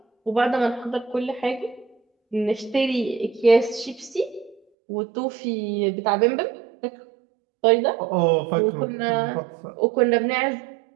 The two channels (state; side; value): drops out; left; at 4.6 s